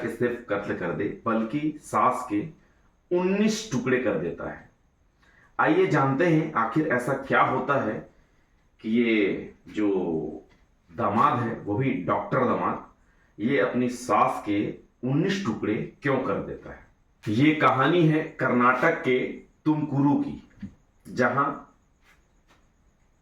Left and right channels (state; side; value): identical; both; correlation 1.00